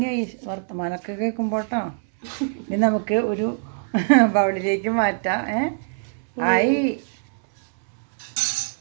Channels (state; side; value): silent; left; 62 dB below the other